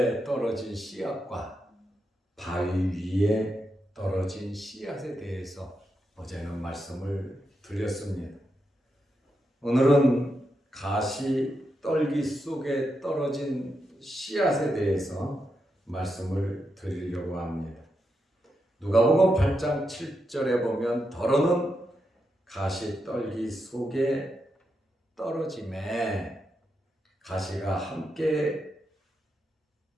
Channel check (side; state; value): both; normal; correlation 0.85